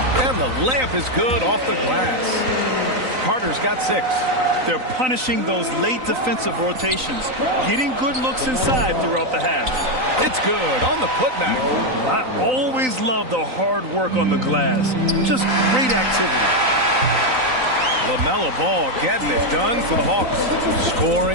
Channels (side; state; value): left; late; 3.9 ms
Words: And the layup is good off the glass. Carter's got 6. They're punishing those late defensive rotations, getting good looks inside throughout the half. It's good on the putback. I always love the hard work on the glass. Just great activity. LaMelo Ball getting it done for the Hawks.